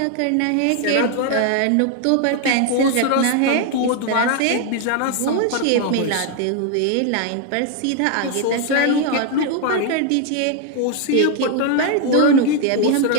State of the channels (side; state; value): both; different; correlation 0.01